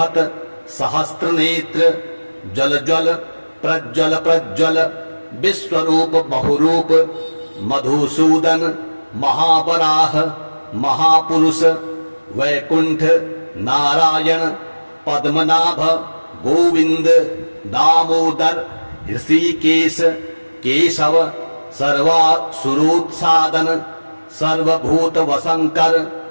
सहस्त्र नेत्र जल जल प्रज्वल प्रज्वल विश्वरूप बहुरूप मधुसूदन महावराह महापुरुष वैकुंठ नारायण पद्मनाभ गोविंद दामोदर ऋषिकेश केशव सर्वासुरोत्सादन सर्वभूत वसंकर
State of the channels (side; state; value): both; inverted; correlation -1.00